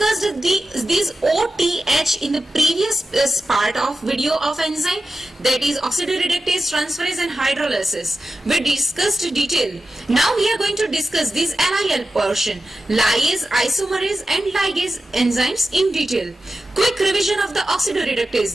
these OTH in the previous part of video of enzyme, that is oxidoreductase, transferase and hydrolysis. We discussed detail. Now we are going to discuss this LIL portion, lyase, isomerase and ligase enzymes in detail. Quick revision of the oxidoreductase,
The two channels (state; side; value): normal; both; correlation 0.92